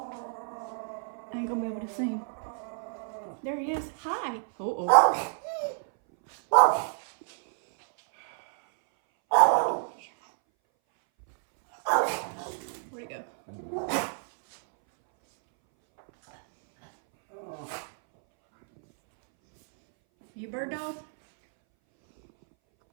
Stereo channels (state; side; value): silent; left; 59 dB below the other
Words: I ain't gonna be able to see him. There he is. Hi. Oh. Where'd he go? You bird dog?